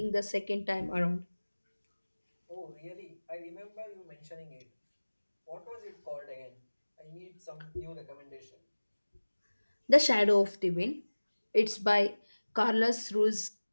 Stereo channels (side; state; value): both; inverted; correlation -1.00